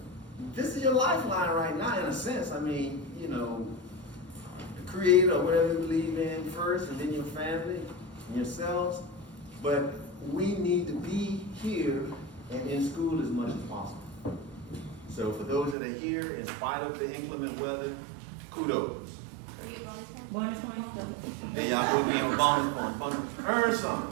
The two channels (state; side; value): drops out; left; at 15.8 s